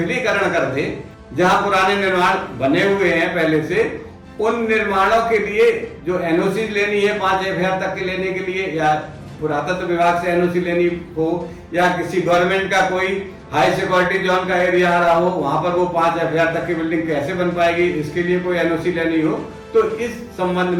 कर दे। जहां पुराने निर्माण बने हुए हैं पहले से, उन निर्माणों के लिए जो एनओसी लेनी है 5 एफआईआर तक के लेने के लिए, या पुरातत्व विभाग से एनओसी लेनी हो या किसी गवर्नमेंट का कोई हाई सिक्योरिटी जोन का एरिया आ रहा हो, वहां पर वो 5 एफआईआर तक की बिल्डिंग कैसे बन पाएगी, इसके लिए कोई एनओसी लेनी हो, तो इस संबंध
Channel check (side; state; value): both; identical; correlation 1.00